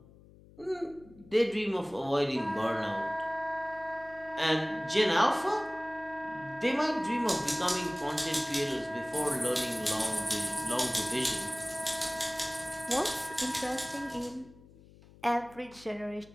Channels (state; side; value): noise; left; hum, 23 dB below the sound